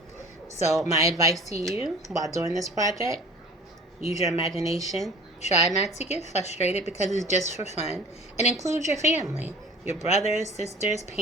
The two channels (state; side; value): normal; both; correlation 0.44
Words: So, my advice to you while doing this project, use your imagination. Try not to get frustrated because it's just for fun. And include your family, your brothers, sisters,